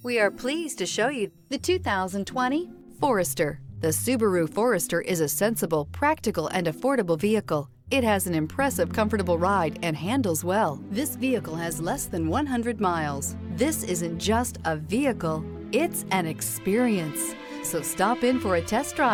We are pleased to show you the 2020 Forester. The Subaru Forester is a sensible, practical, and affordable vehicle. It has an impressive, comfortable ride and handles well. This vehicle has less than 100 miles. This isn't just a vehicle, it's an experience. So stop in for a test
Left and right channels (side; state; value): both; identical; correlation 1.00